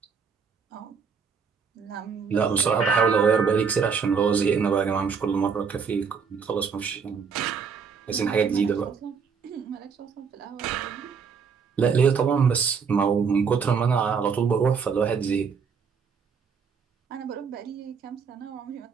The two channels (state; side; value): quieter; left; 6.0 dB